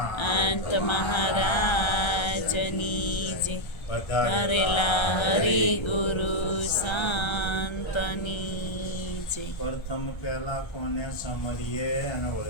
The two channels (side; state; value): right; late; 1.3 ms